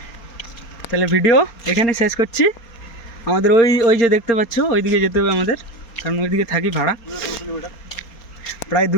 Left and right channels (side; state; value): right; late; 4.3 ms